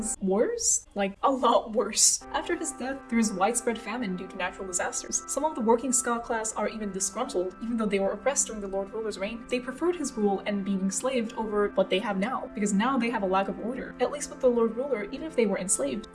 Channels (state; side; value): identical; both; correlation 1.00